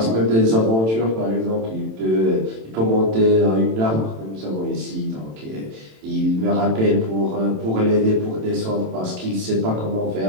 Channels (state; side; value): late; left; 27 ms